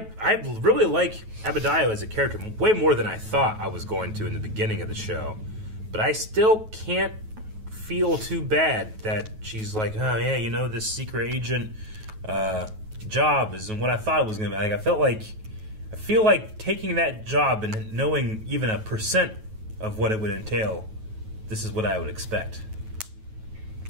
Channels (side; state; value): left; late; 9.3 ms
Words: really like Abadiah as a character way more than I thought I was going to in the beginning of the show, but I still can't feel too bad that she's like, oh yeah, this secret agent job isn't what I thought it was going to be. I feel like taking that job and knowing even a % of what it would entail, this is what I would expect.